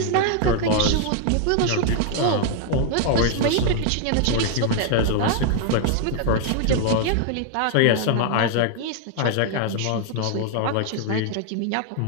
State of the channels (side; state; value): both; different; correlation 0.00